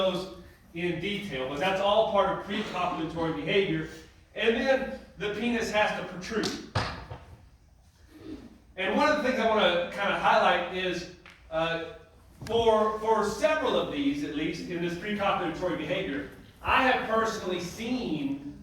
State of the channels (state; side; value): identical; both; correlation 1.00